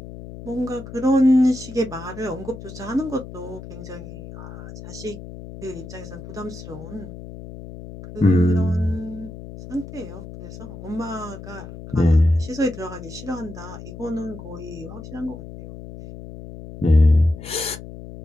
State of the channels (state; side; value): noise; left; hum, 13 dB below the sound